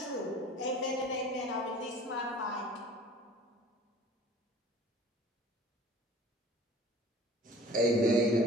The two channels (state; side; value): normal; both; correlation 0.46